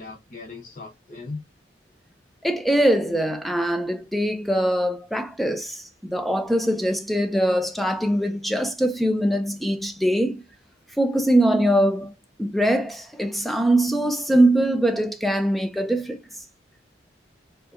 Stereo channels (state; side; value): normal; both; correlation 0.89